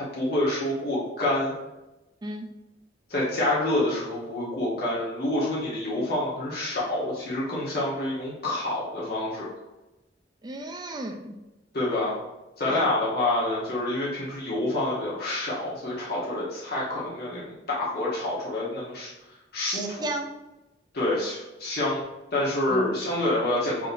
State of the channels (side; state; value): both; normal; correlation 0.27